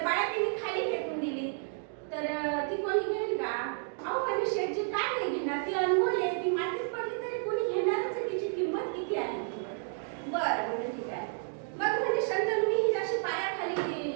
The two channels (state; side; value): silent; left; 57 dB below the other